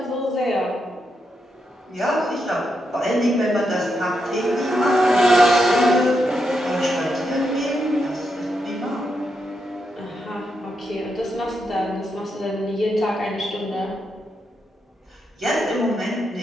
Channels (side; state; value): both; normal; correlation 0.83